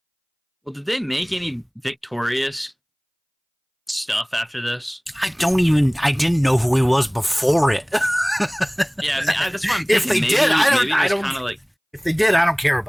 Well, did they make any victorious stuff after this? I didn't know who he was before it. Yeah, that's what I'm If thinking. they did, I don't. Kind of like, If they did, I don't care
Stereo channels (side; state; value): both; identical; correlation 1.00